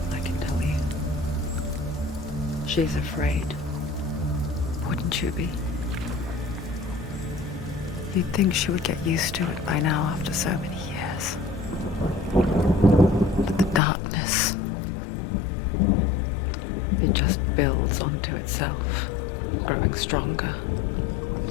I can tell you. She's afraid. Wouldn't you be? You'd think she would get used to it by now after so many years. But the darkness, it just builds onto itself, growing stronger,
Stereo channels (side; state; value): right; drops out; at 13.8 s